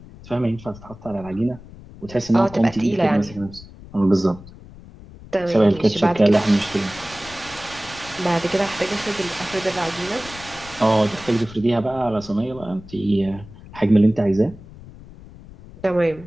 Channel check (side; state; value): left; noise; rumble, 18 dB below the sound